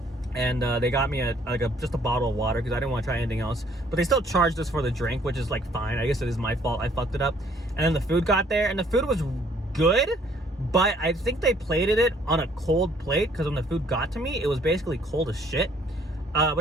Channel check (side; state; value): both; normal; correlation 0.61